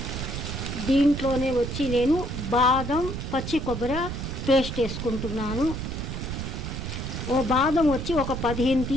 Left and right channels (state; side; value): noise; right; rumble, 5 dB below the sound